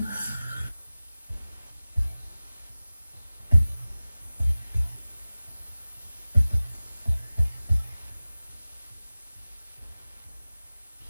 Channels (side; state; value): both; inverted; correlation -0.96